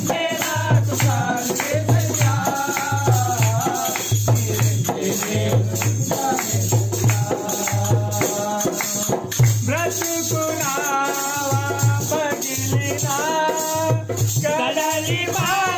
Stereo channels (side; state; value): both; identical; correlation 1.00